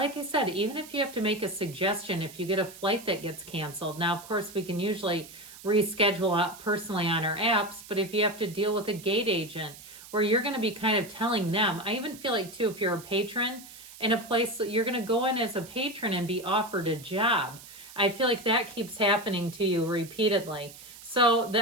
I said, even if you have to make a suggestion, if you get a flight that gets canceled. Now, of course, we can usually reschedule out personally on our apps, but if you have to deal with a gate agent where you're going to be kind of telling them, I even feel like too, if you're a patron in a place that you're going to go in as a patron and be offered a job. I feel like that keeps happening to you repeatedly. So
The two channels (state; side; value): noise; right; hiss, 17 dB below the sound